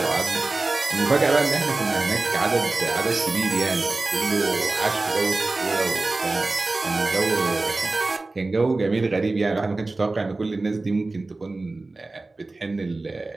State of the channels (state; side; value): quieter; left; 3.3 dB